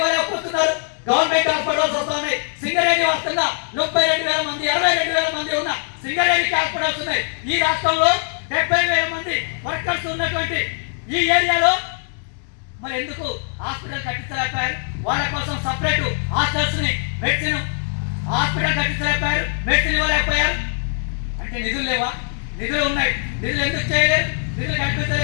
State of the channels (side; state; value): right; silent; digital silence